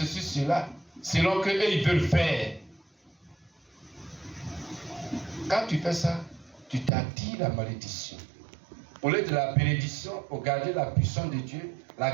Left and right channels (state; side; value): drops out; left; at 6.9 s